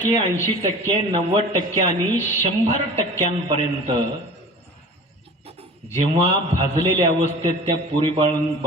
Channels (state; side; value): normal; both; correlation 0.40